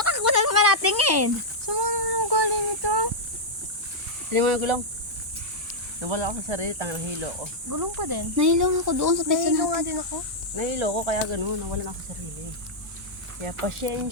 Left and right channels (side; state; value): both; normal; correlation -0.06